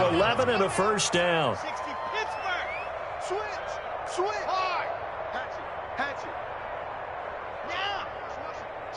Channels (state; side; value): identical; both; correlation 1.00